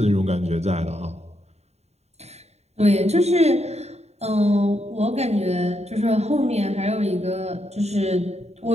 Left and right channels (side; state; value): left; late; 0.31 ms